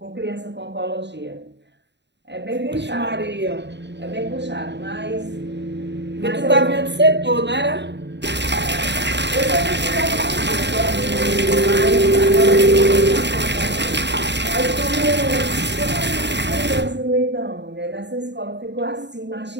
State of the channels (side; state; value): left; late; 0.51 ms